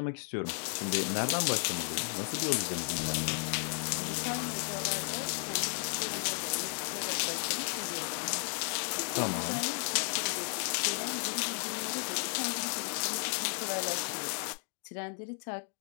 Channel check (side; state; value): right; silent; 55 dB below the other